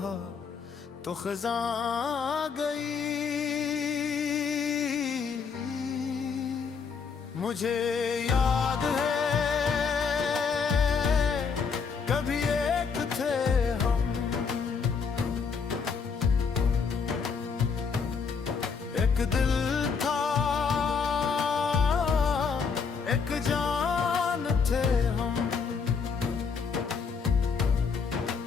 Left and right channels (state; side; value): quieter; right; 5.7 dB